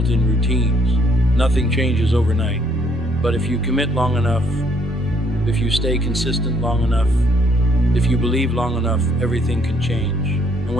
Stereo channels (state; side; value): normal; both; correlation 0.67